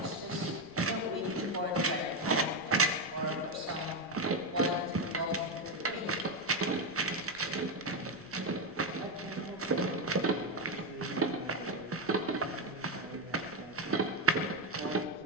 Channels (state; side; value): noise; left; rumble, 24 dB below the sound